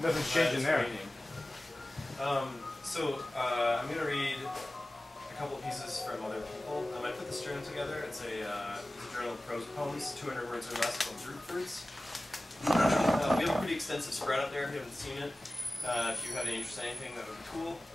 Nothing's changing there. I'm going to read a couple of pieces from other people. I put this journal together. It's a journal of prose poems, 200 words or less, called Drupe Fruits. We have a pretty extensive spread out there if you haven't seen it. If you have any interest in anything, that would be cool.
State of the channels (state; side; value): normal; both; correlation 0.96